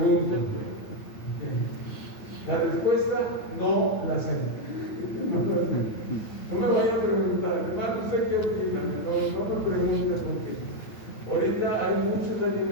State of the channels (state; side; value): late; right; 9.1 ms